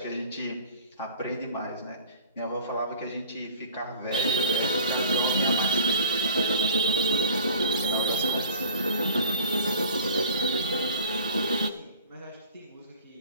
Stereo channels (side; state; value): both; inverted; correlation -0.47